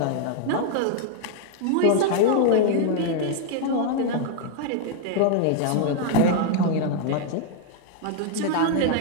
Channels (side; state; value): both; different; correlation 0.00